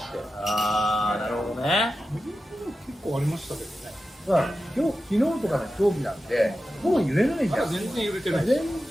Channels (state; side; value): normal; both; correlation 0.92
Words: て。ああ、なるほどね。結構ありましたけどね。だから昨日とかの飛行機なんてもう揺れないじゃん。全然揺れてない。全